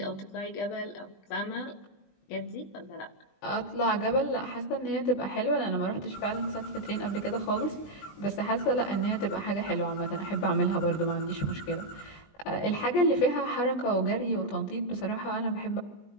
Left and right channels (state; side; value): late; right; 20 ms